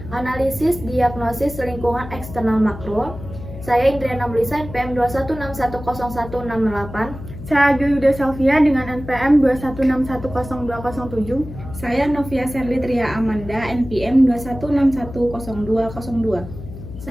Analisis Diagnosis Lingkungan Eksternal Makro. Saya Indriana Melisa, NPM 216100168. Saya Agilda Selvia dengan NPM 216100207. Saya Novia Serli Tria Amanda, NPM 216100202.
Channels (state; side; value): noise; left; hum, 12 dB below the sound